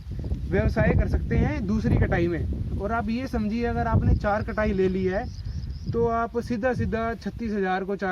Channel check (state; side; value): identical; both; correlation 1.00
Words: व्यवसाय कर सकते हैं दूसरी कटाई में। और आप ये समझिए, अगर आपने 4 कटाई ले ली है तो आप सीधा 36,000 को